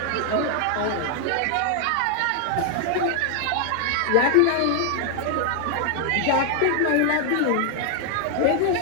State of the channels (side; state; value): both; different; correlation 0.00